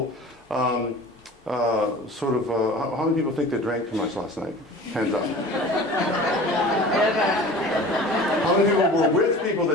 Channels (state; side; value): normal; both; correlation 0.40